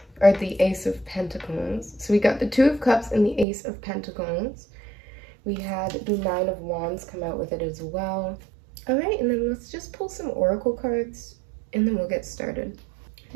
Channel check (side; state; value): left; drops out; at 3.5 s